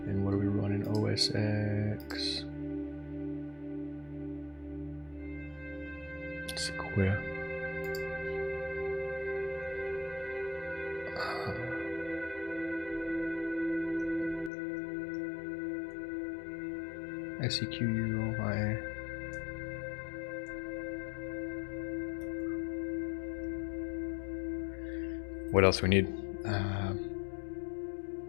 And what are we running? OS X. Sequoia. SEQUI. What else we need? I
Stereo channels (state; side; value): drops out; right; at 14.5 s